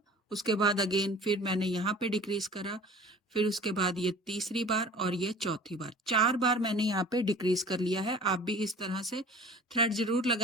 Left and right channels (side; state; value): both; normal; correlation 0.44